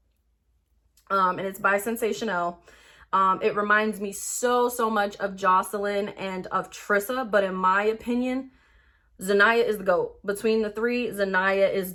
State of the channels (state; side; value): identical; both; correlation 1.00